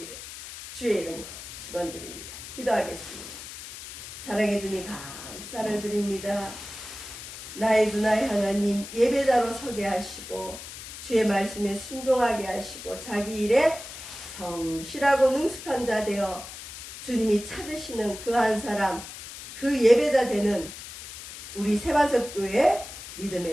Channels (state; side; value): noise; left; hiss, 12 dB below the sound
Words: 주의 이름으로 축원드립니다. 기도하겠습니다. 사랑해 주님 감사를 드립니다. 나의 주 나의 하나님 예배자로 서게 하시고 주의 말씀에 순종하게 하시고 자기 일에 성실하고 능숙한 자 되어 주님이 찾으시는 그 한 사람 그 예배자 되는 우리 세반석교회